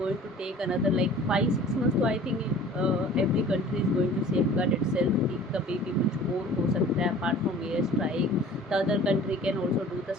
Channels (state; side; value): normal; both; correlation 0.45